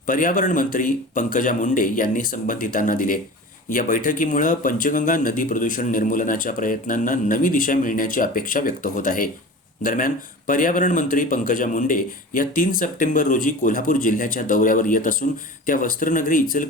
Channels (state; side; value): normal; both; correlation 0.36